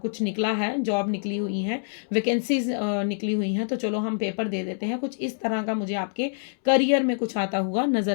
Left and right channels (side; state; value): right; silent; 61 dB below the other